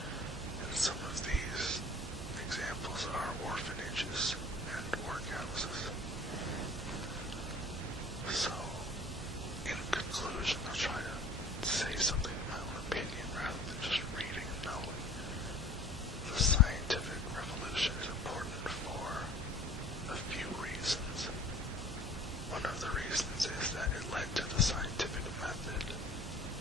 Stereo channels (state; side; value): normal; both; correlation 0.46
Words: And some of these examples are orphanages and workhouses. So, in conclusion, I'll try to say something in my own opinion rather than just reading and knowing. The scientific revolution is important for a few reasons. One of the reasons is that it led to the scientific method,